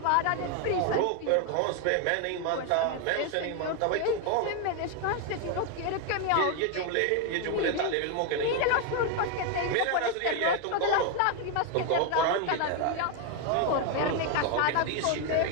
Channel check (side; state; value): both; different; correlation 0.01